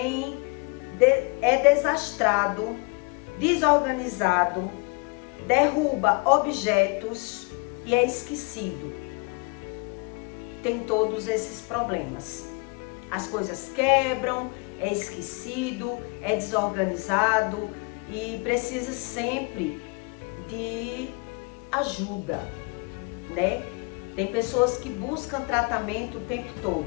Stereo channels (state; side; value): quieter; right; 29.7 dB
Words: é desastrado, desorganizado, derruba objetos e é esquecido. Tem todos esses problemas. As coisas quebram, é esquecido, é desorganizado e precisa sempre de ajuda, né? Tem pessoas que buscam tratamento o tempo